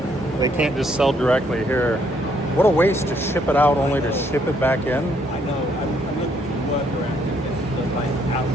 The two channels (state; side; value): normal; both; correlation 0.69